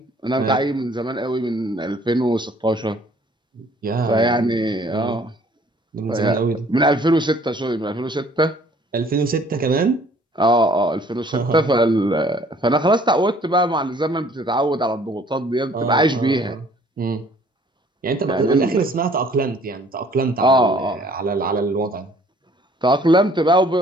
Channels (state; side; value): normal; both; correlation 0.57